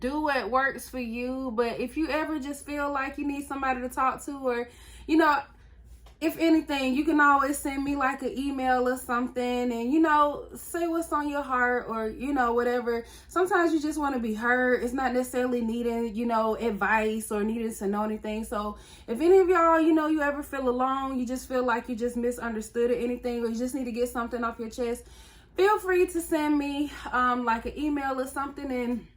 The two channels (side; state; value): both; identical; correlation 1.00